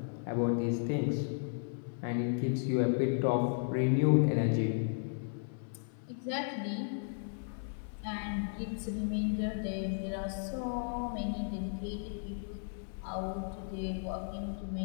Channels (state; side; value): silent; right; 55 dB below the other